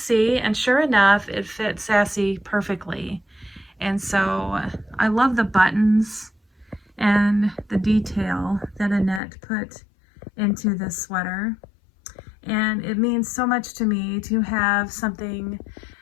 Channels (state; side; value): drops out; right; at 9.2 s